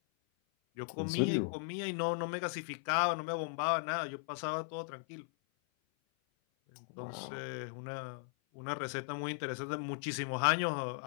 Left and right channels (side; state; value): right; silent; 53 dB below the other